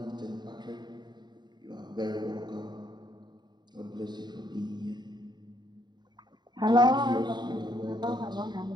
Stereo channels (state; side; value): late; left; 0.21 ms